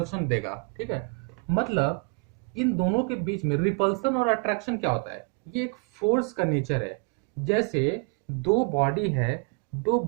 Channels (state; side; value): quieter; left; 36.3 dB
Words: देगा, ठीक है। मतलब इन दोनों के बीच में रिपल्सन और अट्रैक्शन क्या होता है, ये एक फोर्स का नेचर है। जैसे दो बॉडी है, दो